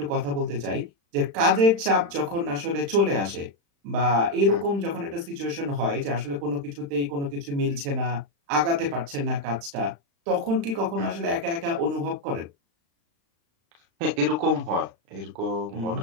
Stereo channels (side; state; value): left; late; 35 ms